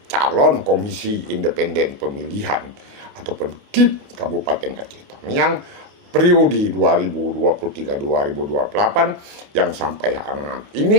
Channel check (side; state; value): left; late; 29 ms